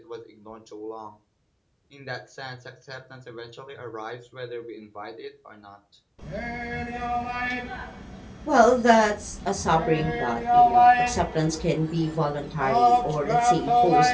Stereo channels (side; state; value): both; identical; correlation 1.00